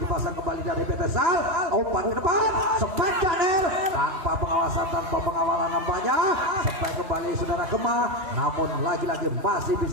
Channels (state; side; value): late; left; 3.0 ms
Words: kembali dari PT Sal, umpan ke depan, sempat Janer tanpa pengawasan, tanpa pengawalan nampaknya sempat kembali saudara Kemah namun lagi-lagi masih